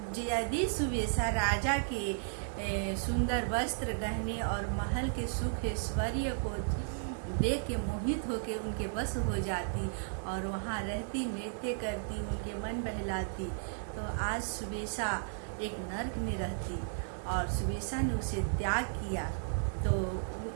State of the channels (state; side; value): silent; left; digital silence